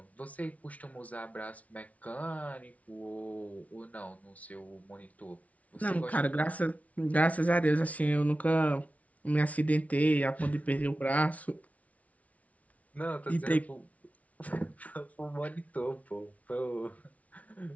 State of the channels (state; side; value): late; right; 0.068 ms